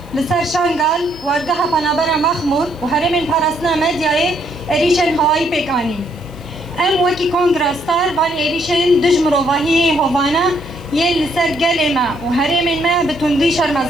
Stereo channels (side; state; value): left; noise; hiss, 29 dB below the sound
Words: لسر شانگال وارگاه پنابر مخمور و هرمین پارسنا مدیای ایریشن هوایی پیکانی ام وکی کنگرستار بان ایریشن دجمروواهی هوانا یه لسر گل ما و هرمین ما بتندی